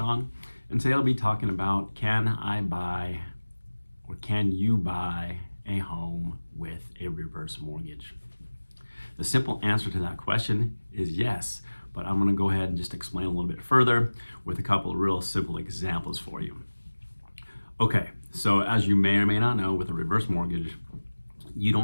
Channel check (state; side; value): inverted; both; correlation -1.00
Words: and today I'll be talking about can you buy a home with a reverse mortgage? The simple answer to that question is yes, but I'm gonna go ahead and just explain a little bit further with a couple of real simple examples for you. Okay, so as you may or may not know, with a reverse mortgage, you